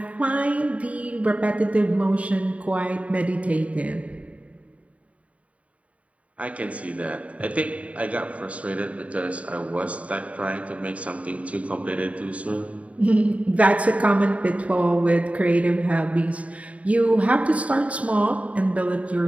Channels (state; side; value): late; left; 0.066 ms